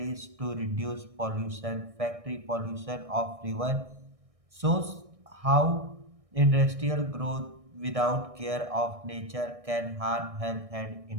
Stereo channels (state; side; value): late; left; 1.6 ms